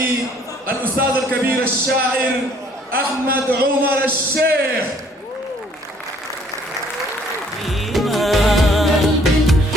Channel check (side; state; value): both; normal; correlation 0.61